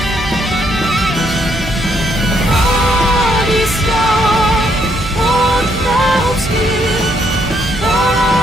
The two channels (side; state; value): right; noise; hum, 12 dB below the sound